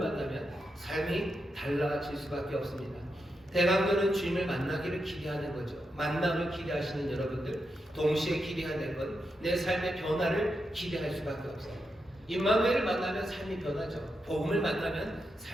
삶이 달라질 수밖에 없습니다. 대강도는 주님을 만나기를 기대하는 거죠. 만남을 기대하시는 여러분들, 동시에 기대해야 될 건 내 삶의 변화를 기대할 수밖에 없어요. 임마누엘을 만나면 삶이 변하죠. 복음을 만나면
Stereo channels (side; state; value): both; normal; correlation 0.86